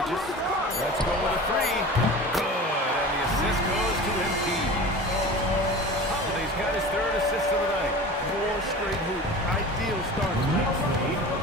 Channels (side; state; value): both; normal; correlation 0.36